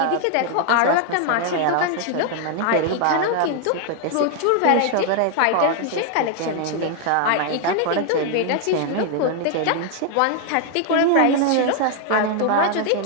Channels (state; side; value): different; both; correlation 0.00